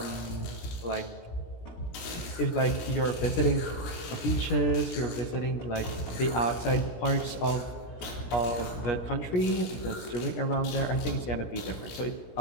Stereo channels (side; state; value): right; late; 17 ms